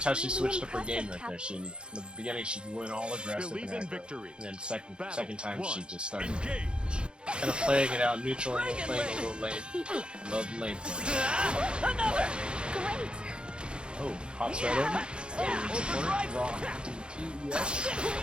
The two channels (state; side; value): late; left; 0.053 ms